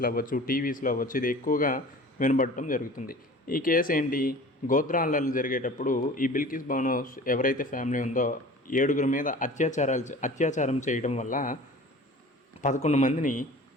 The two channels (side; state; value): both; normal; correlation 0.42